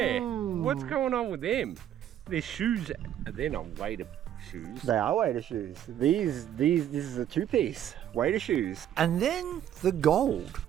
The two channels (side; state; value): left; quieter; 10.6 dB